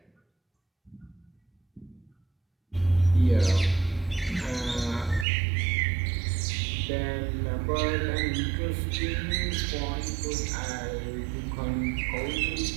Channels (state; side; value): drops out; left; at 5.2 s